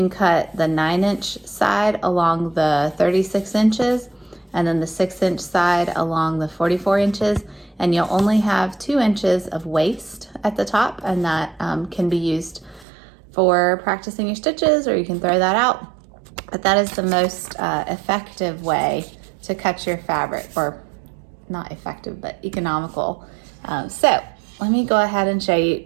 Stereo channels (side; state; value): left; drops out; at 12.9 s